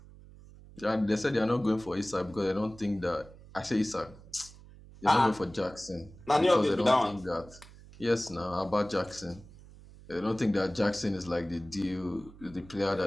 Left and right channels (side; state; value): right; noise; hum, 20 dB below the sound